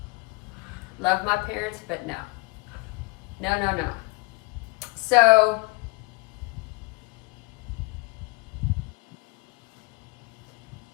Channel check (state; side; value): quieter; right; 26.0 dB